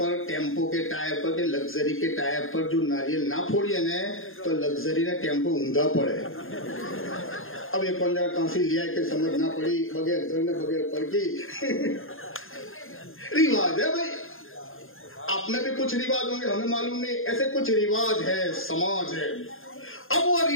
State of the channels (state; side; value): late; right; 0.60 ms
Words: ٹیمپو کے ٹائر پر, کہ لگزری کے ٹائر پر جو ناریل نہ پھوڑیے نا, تو لگزری نے ٹیمپو اوندا پڑے. اب یہ کون جگہ کہاں سے لیا کہ سمجھ نہ پڑی, بغیر دھرنے بغیر پڑ کی. رواج ہے بھائی, آپ میں بھی کچھ رواج ہوں گے, ہمیں معلوم نہیں, ایسے کچھ رواج ہے, سماج ہے. اب وہ